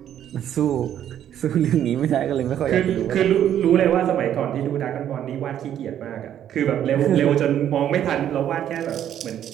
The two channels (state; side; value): quieter; left; 10.5 dB